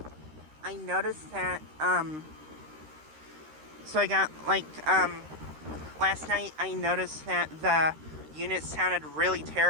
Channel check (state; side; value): late; left; 13 ms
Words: noticed that, last night I noticed that the unit sounded really